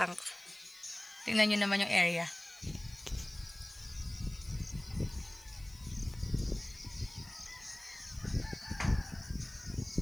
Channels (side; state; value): left; noise; hiss, 23 dB below the sound